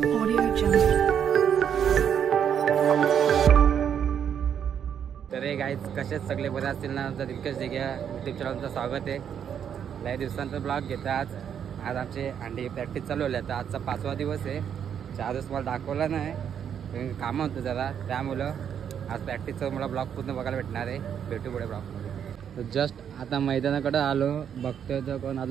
तर हे गाईज कसेच सगळे बरे असतील ना. आमचा दिलकेश दिघे यूट्यूब चॅनलचं स्वागत आहे. लय दिवसांचा ब्लॉग घेता. आज आमची अंडी प्रॅक्टिस चालू आहे. आता आजचा 5वा दिवस आहे. 4 दिवस मला दाखवला नाही, कामं होतं जरा, त्यामुळं आज प्रॅक्टिसचं मला ब्लॉग पूर्ण बघायला भेटणार आहे. भेटू पुढे ब्लॉगमध्ये. तर जस्ट आता मैदानाकडे आलो, बघतोय तर कोण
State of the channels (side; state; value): left; quieter; 8.5 dB